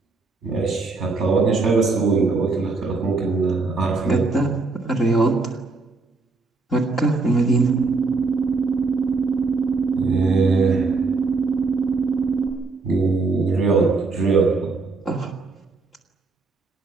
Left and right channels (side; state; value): left; quieter; 3.9 dB